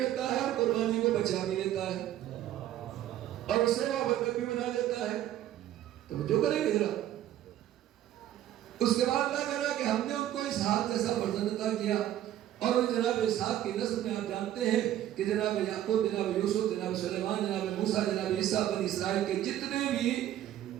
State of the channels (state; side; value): quieter; left; 12.4 dB